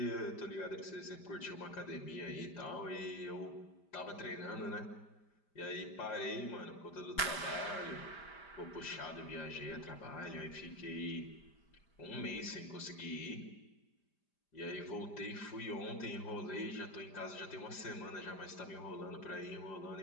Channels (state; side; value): late; right; 5.0 ms